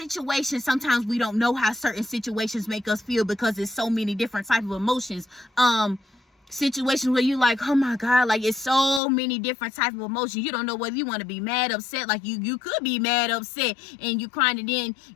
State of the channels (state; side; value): drops out; right; at 9.0 s